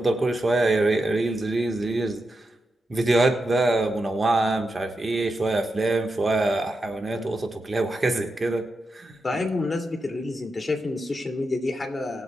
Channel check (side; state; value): both; normal; correlation 0.87